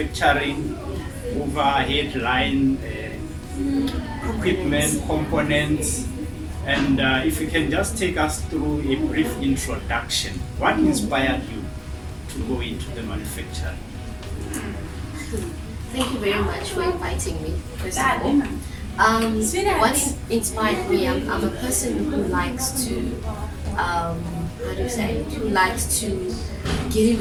overhead line equipment, components, and if you can just take us through a brief introduction. What inspired you to go into the manufacturing? Thank you very much for inviting me, first of all. What inspired me, I'm a person who likes to who likes to get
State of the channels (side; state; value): both; identical; correlation 1.00